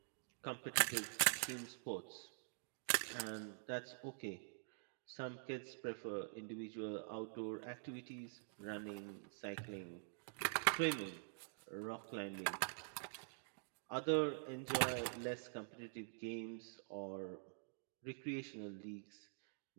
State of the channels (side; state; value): left; silent; digital silence